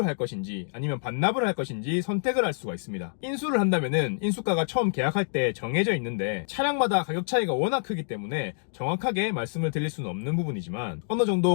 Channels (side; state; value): right; silent; digital silence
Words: 할 것인지 아니면 반납을 할 것인지 선택을 할 수가 있습니다. 인수를 한다면은 인수가가 처음 계약할 때 정해져 있는데 차량마다 가격 차이가 워낙 크기 때문에 정확하게 말씀을 드릴 수는 없는 부분이지만 어느